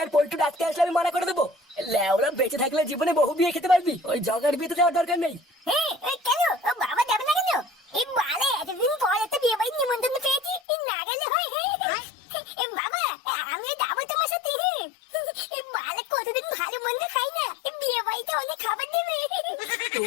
পল্টু ডাকতে আসলে আমি মানা করে দেবো। ল্যাওরা বেঁচে থাকলে জীবনে বহু বিয়ে খেতে পারবি, ওই জগার বিয়েতে যাওয়ার দরকার নেই। কেন বাবা যাবে না কেন? এই বালে এতদিন পর একটা বিয়ে বাড়ির নিমন্ত্রণ পেয়েছি, না গেলে হয়? এই বাবা, আমি যাবো তোমার সাথে। এই বালে কতদিন ভালো মন্দ খাই না, বিয়ে বাড়িতে অনেক খাবার দেবে।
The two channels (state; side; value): drops out; right; at 10.6 s